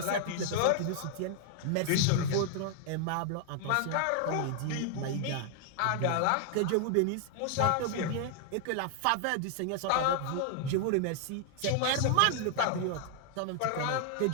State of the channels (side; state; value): both; different; correlation 0.00